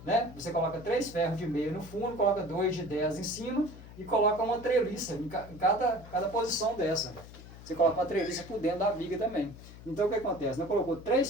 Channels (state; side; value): noise; left; hum, 16 dB below the sound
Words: né? Você coloca 3 ferros de meia no fundo, coloca 2 de 10 em cima e coloca uma treliça em cada posição dessa. Você coloca uma treliça por dentro da viga também. Então o que acontece? Nós colocou